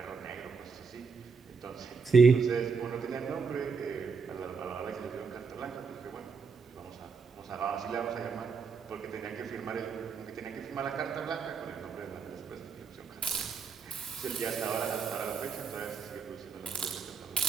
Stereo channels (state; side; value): quieter; left; 5.3 dB